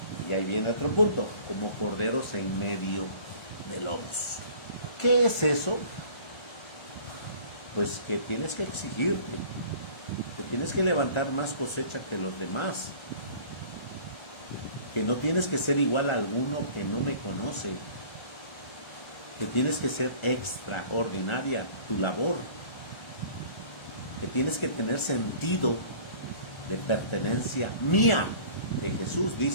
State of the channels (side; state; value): right; late; 1.3 ms